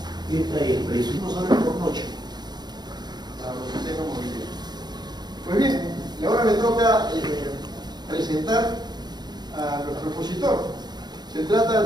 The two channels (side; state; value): left; late; 0.20 ms